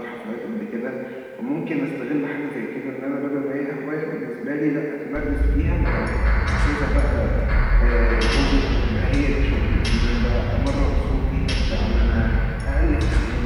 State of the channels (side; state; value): both; identical; correlation 1.00